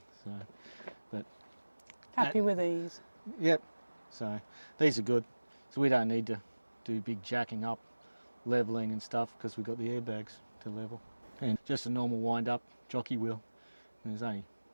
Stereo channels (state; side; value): inverted; both; correlation -1.00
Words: So, but happy with these. Yep. So these are good. So we don't need to do big jacking up, leveling and stuff, because we've got the airbags to level. And just a normal wind up jockey wheel. And there's only